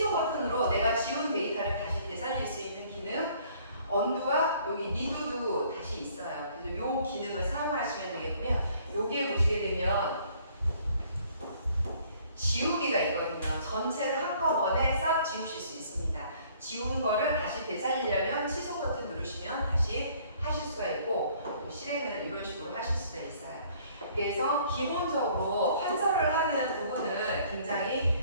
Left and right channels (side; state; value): both; inverted; correlation -0.59